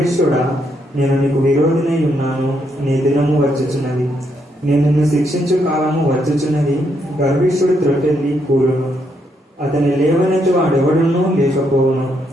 నేను నీకు విరోధినై ఉన్నాను. నీ దినము వచ్చుచున్నది, నేను నిన్ను శిక్షించు కాలము వచ్చుచున్నది. గర్విష్ఠుడు త్రొట్టెల్లి కూలును, అతని లేవనెత్తి వాడెవడనూ లేకపోవును.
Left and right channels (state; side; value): normal; both; correlation 0.77